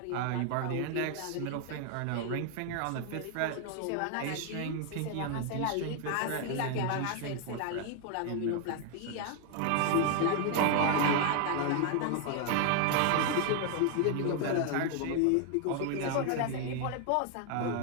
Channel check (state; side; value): different; both; correlation 0.00